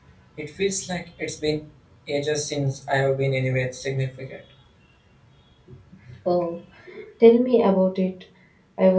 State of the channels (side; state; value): both; identical; correlation 1.00